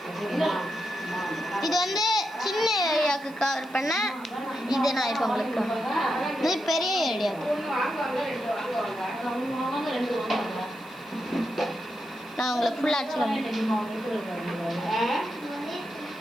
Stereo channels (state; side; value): noise; left; hiss, 26 dB below the sound